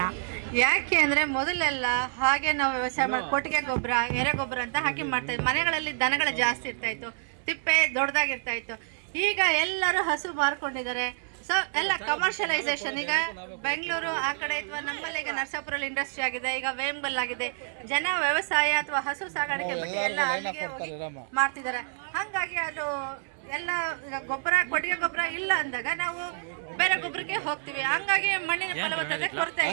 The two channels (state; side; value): silent; left; 59 dB below the other